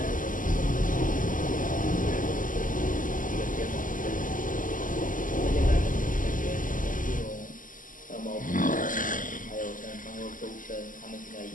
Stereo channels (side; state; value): right; late; 0.38 ms